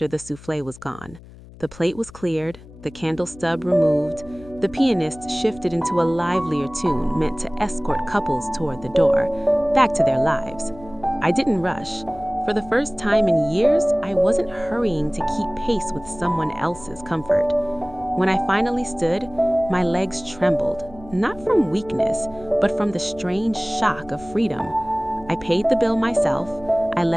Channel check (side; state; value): left; noise; hum, 20 dB below the sound